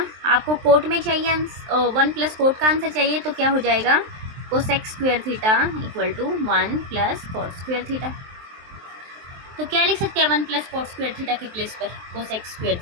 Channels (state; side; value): late; left; 23 ms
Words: आपको कोट में चाहिए 1 + कोट का आंसर चाहिए, तो क्या हो जाएगा cosec square theta equal to 1 + coat square theta. तो क्या लिख सकते हैं 1 + कोट स्क्वायर थीटा के प्लेस पर कोसेक स्क्वायर